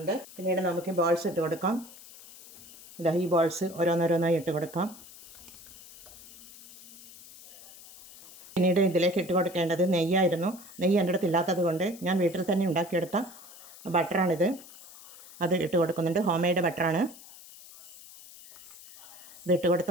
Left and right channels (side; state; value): left; noise; hiss, 19 dB below the sound